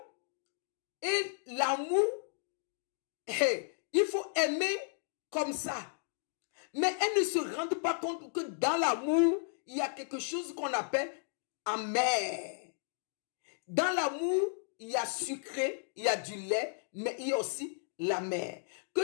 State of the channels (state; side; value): silent; right; digital silence